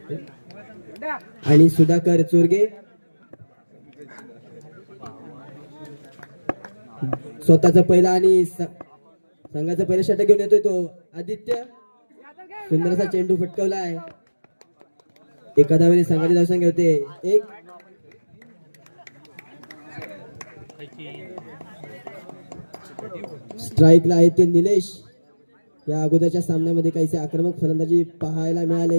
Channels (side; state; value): both; inverted; correlation -1.00